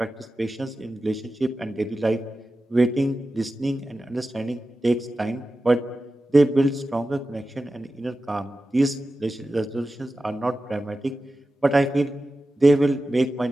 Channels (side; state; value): both; normal; correlation 0.93